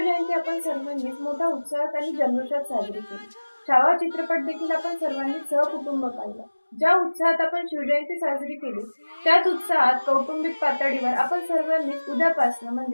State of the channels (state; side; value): inverted; both; correlation -1.00